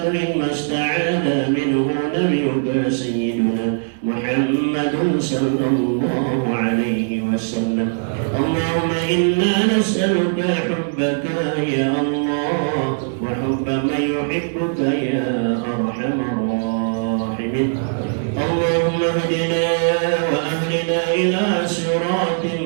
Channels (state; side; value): silent; left; digital silence